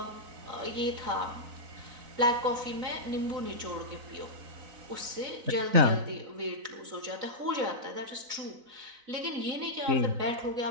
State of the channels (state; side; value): late; left; 4.0 ms